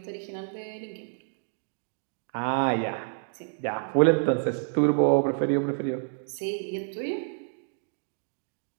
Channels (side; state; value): left; silent; digital silence